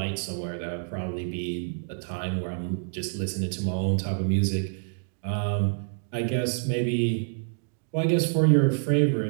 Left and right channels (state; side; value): silent; left; digital silence